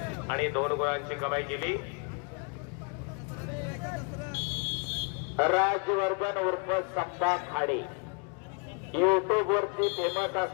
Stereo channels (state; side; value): quieter; right; 36.4 dB